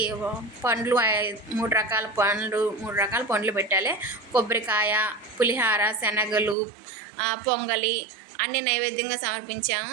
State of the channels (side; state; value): left; drops out; at 6.6 s